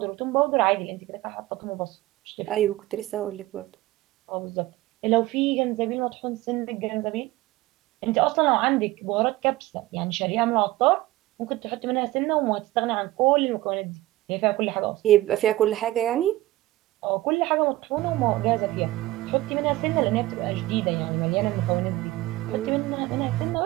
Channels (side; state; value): left; quieter; 17.4 dB